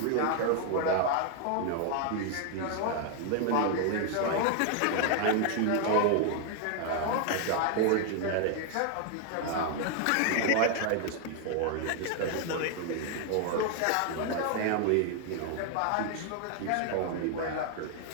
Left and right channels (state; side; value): different; both; correlation 0.00